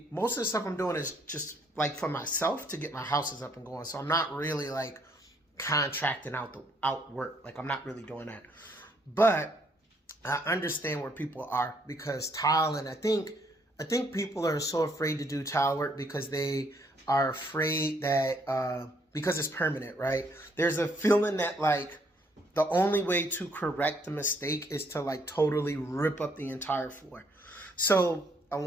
most of the stuff I'm doing is just like for myself to get my houses up and going. So I'm not really like contracting out work. Like I'm not really doing that. But I understand where people are because tile, and I think people are so afraid to do tile work because they are afraid that because it's permanent, right? There's a feeling that like the only way to correct the mistake is to like totally rip up the entire floor. So I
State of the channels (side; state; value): both; normal; correlation 0.68